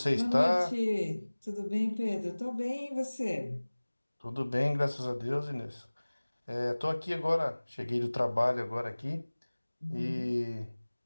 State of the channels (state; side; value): inverted; both; correlation -1.00